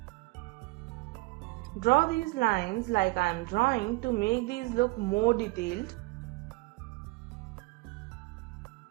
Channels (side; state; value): left; quieter; 24.3 dB